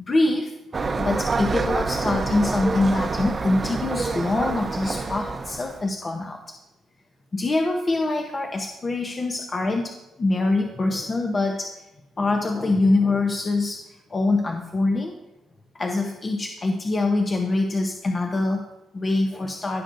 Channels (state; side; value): normal; both; correlation 0.91